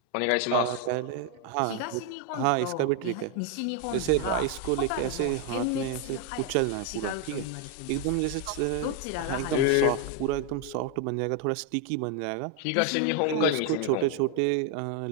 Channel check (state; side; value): different; both; correlation 0.01